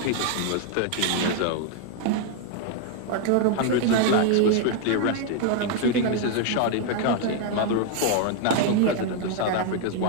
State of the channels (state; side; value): different; both; correlation 0.00